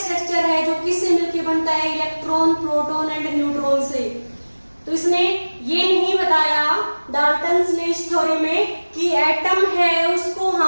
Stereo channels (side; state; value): both; inverted; correlation -1.00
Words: स्ट्रक्चर है जो किससे मिलकर बनता है इलेक्ट्रॉन, प्रोटॉन एंड न्यूट्रॉन से। तो इसने ये नहीं बताया डाल्टन्स ने इस थ्योरी में कि एटम है उसको